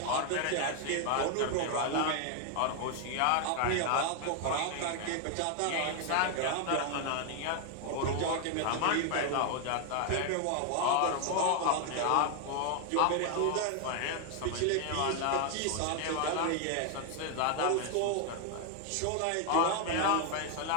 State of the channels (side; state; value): both; different; correlation 0.00